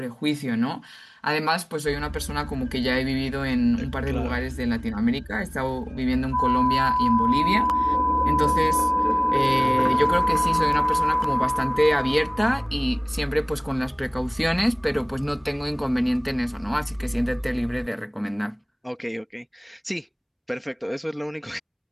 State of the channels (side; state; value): both; identical; correlation 1.00